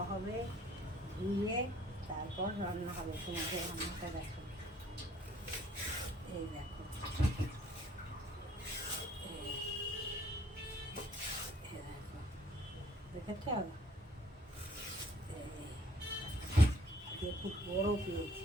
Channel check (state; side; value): normal; both; correlation 0.60